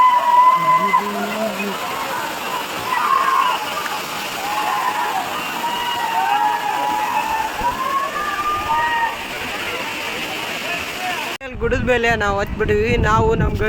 ಗುಡದ ಮೇಲೆ ನಾವು ಹತ್ಬಿಟ್ಟಿವಿ. ನಾವು ನಮ್ಮ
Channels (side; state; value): both; identical; correlation 1.00